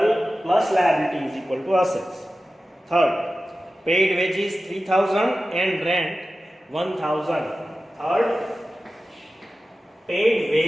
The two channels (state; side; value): normal; both; correlation 0.94